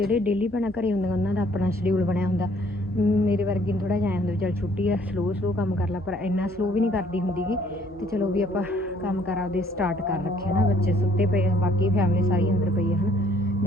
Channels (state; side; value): normal; both; correlation 0.61